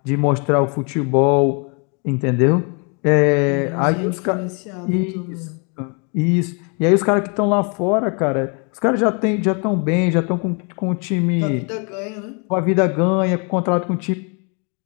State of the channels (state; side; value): quieter; right; 35.6 dB